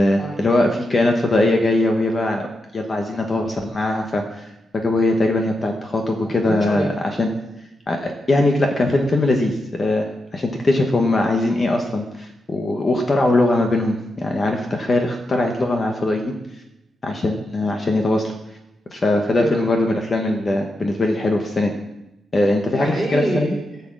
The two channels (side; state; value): both; normal; correlation 0.86